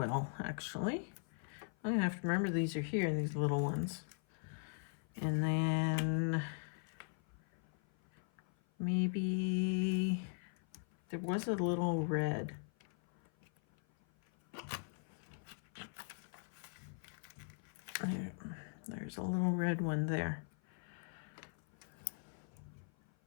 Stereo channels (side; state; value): right; silent; 51 dB below the other